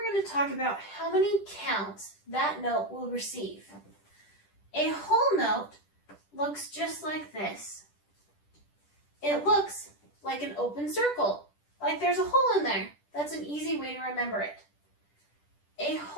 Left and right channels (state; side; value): late; right; 10 ms